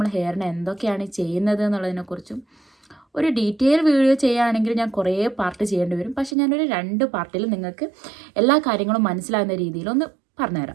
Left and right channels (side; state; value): left; drops out; at 6.4 s